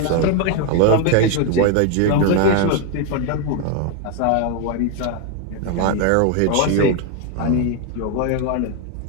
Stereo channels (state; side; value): different; both; correlation 0.01